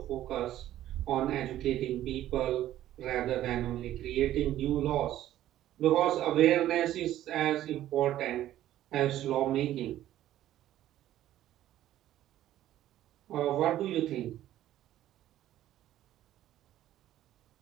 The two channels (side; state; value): left; quieter; 13.1 dB